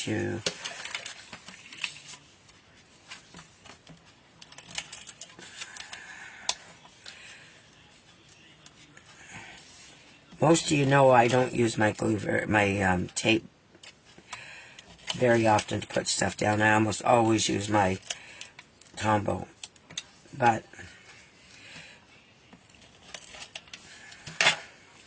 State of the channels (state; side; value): identical; both; correlation 1.00